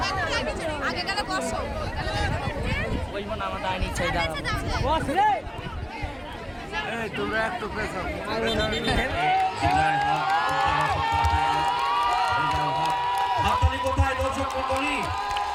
হাততালি কোথায় দর্শক মন্ডলী?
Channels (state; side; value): identical; both; correlation 1.00